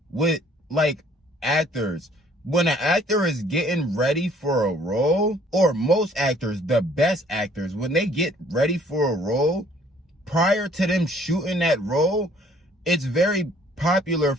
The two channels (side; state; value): both; normal; correlation 0.59